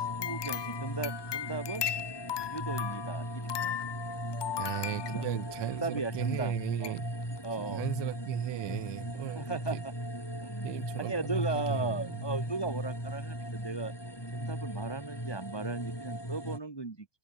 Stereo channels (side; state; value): right; late; 1.2 ms